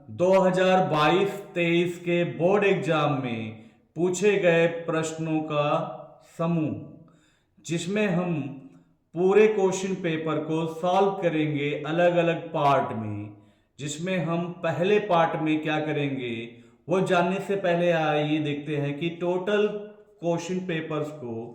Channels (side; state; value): both; identical; correlation 1.00